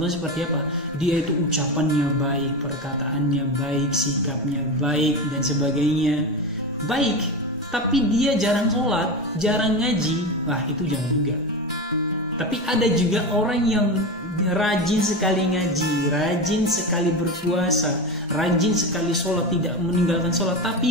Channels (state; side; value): normal; both; correlation 0.21